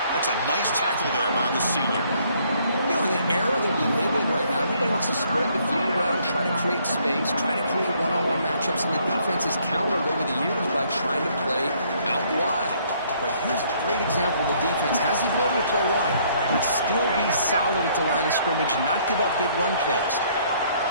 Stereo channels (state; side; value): inverted; both; correlation -0.65